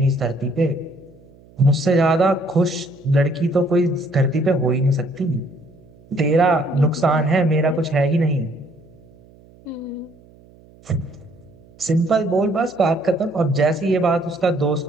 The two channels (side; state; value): right; noise; hum, 26 dB below the sound